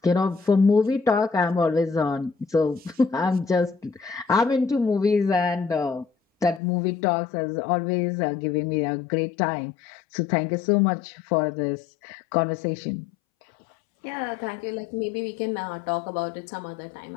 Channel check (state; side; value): drops out; right; at 6.6 s